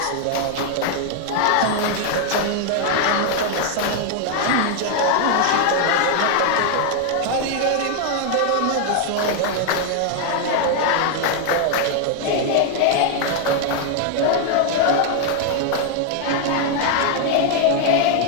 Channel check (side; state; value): both; different; correlation 0.00